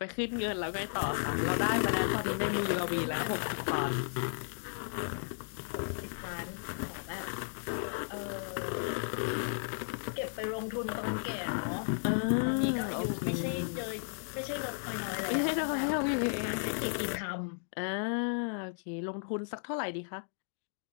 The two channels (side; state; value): right; silent; digital silence